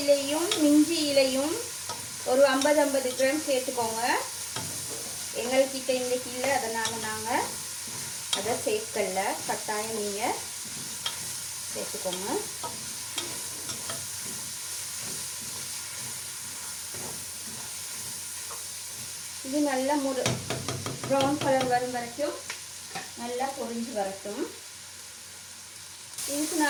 இலையும் மிஞ்சி இலையும் ஒரு 50 கிராம் சேர்த்துக்கோங்க. எங்கள்கிட்ட இன்றைக்கி இல்லை, அதனால் நாங்கள் அதை சேர்க்கல. கட்டாயம் நீங்கள் சேர்த்துக்கோங்க. இது நல்லா ப்ரௌன் கலர் வரும் வரைக்கும் நல்லா பொரிஞ்சு வரட்டும். இதுக்கு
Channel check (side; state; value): both; identical; correlation 1.00